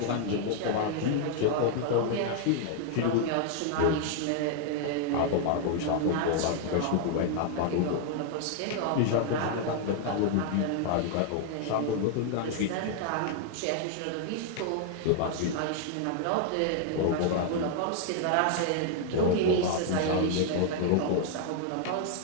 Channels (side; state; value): both; different; correlation 0.00